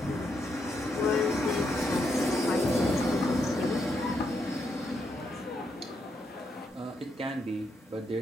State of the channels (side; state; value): both; normal; correlation 0.80